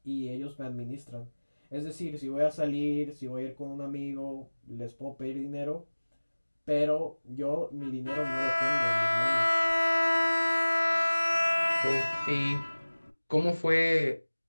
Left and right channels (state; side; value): inverted; both; correlation -1.00